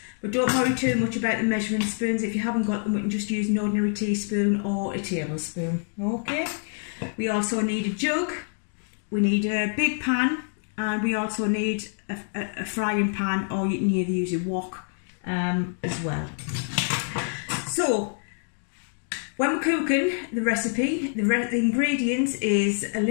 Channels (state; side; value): silent; right; 61 dB below the other